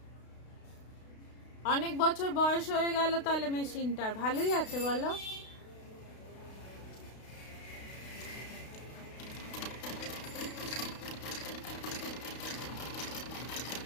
অনেক বছর বয়স হয়ে গেল তাহলে মেশিনটার। ভালোই আছে বলো।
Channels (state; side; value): late; right; 32 ms